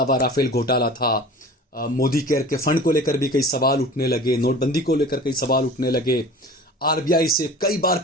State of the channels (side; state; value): both; normal; correlation 0.40